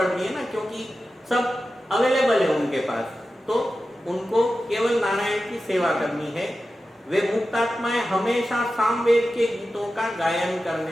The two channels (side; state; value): both; normal; correlation 0.93